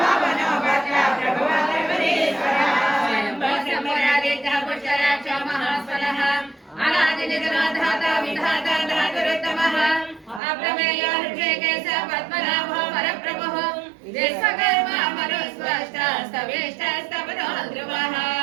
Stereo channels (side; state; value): left; drops out; at 10.4 s